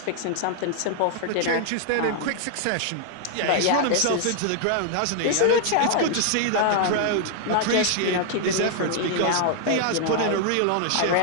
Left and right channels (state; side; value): different; both; correlation 0.00